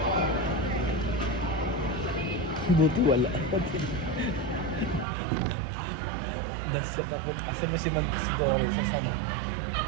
Buti wala. Nasyak ako. Asa mo si Doris? Sa sana?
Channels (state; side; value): drops out; left; at 5.1 s